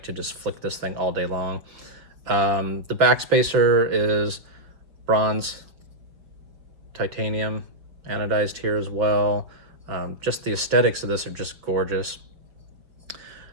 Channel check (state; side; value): late; left; 5.7 ms